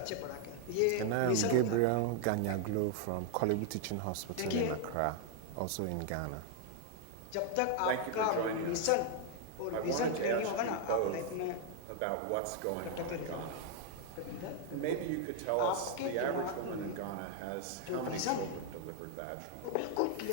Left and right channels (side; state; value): both; different; correlation 0.00